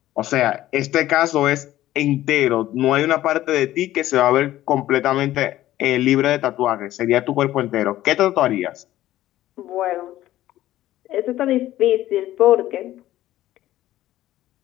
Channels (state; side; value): quieter; right; 14.4 dB